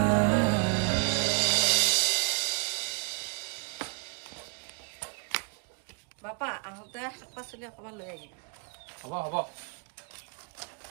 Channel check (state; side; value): quieter; left; 38.6 dB